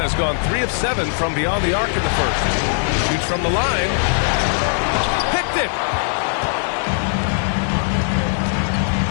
gone 3 of 7 from beyond the arc in the first. Shoots from the line. Picked it.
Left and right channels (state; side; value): silent; right; digital silence